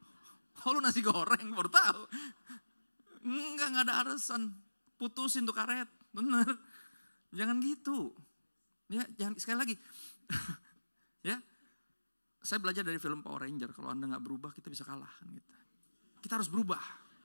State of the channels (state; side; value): inverted; both; correlation -1.00